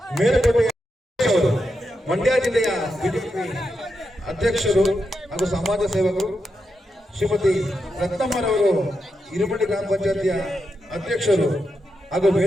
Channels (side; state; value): both; normal; correlation 0.86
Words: ಮೇಲುಕೋಟೆಯ ಅವರು, ಮಂಡ್ಯ ಜಿಲ್ಲೆಯ ಬಿಜೆಪಿ ಅಧ್ಯಕ್ಷರು ಹಾಗೂ ಸಮಾಜ ಸೇವಕರು, ಶ್ರೀಮತಿ ರತ್ನಮ್ಮರವರು ಹಿರೇಮಠ ಗ್ರಾಮ ಪಂಚಾಯತಿಯ ಅಧ್ಯಕ್ಷರು ಹಾಗೂ